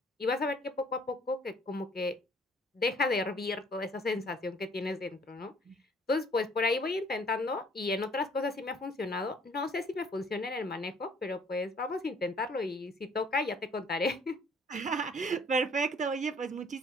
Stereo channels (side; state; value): both; normal; correlation 0.58